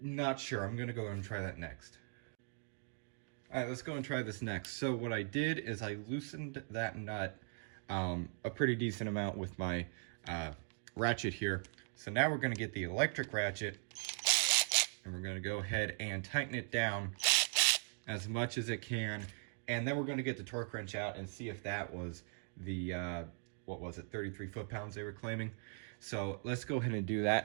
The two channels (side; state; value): left; silent; 51 dB below the other